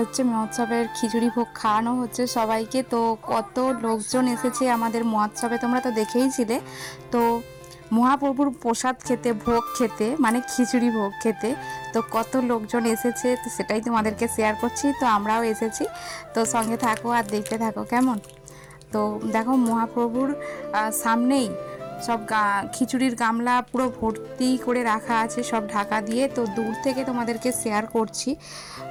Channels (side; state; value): both; identical; correlation 1.00